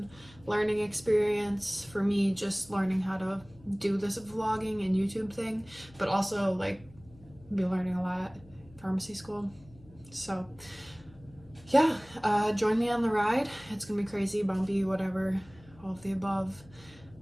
learning experience for me, just learning how to do this vlogging and YouTube thing, but also like be learning a lot at pharmacy school. So yeah, join me on the ride. It's gonna be crazy, bumpy, whatever, all of the above.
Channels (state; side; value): noise; left; hum, 23 dB below the sound